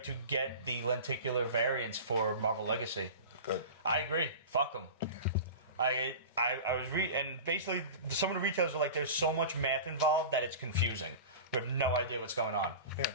get the lenticular variants for Marvel Legacy. Good. I agree. Fuck them. I was and basically some of the retailers are like, there's so much math involved that it's confusing. We have no idea what's going on.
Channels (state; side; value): inverted; both; correlation -0.32